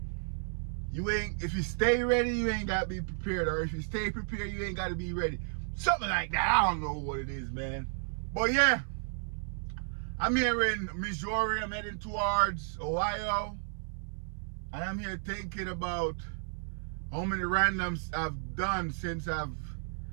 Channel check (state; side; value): silent; left; 56 dB below the other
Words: if you stay ready, you ain't gotta be prepared. Or if you stay prepared, you ain't gotta be ready. Something like that. I don't know what it is, man. But yeah, I'm here in Missouri. I'm heading towards Ohio. And I'm here thinking about how many randoms I've done since I've